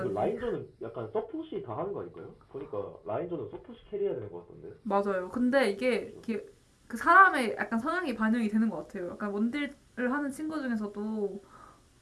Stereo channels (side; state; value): both; identical; correlation 1.00